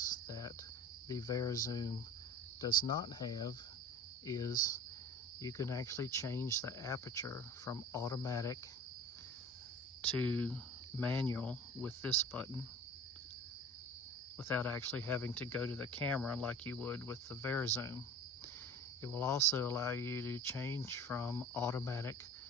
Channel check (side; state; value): both; normal; correlation 0.39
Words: that the VariZoom does not have is you can actually change the aperture from automatic to manual with this button without actually having to go to the camera like you would with the VariZoom. It will also allow you to change from automatic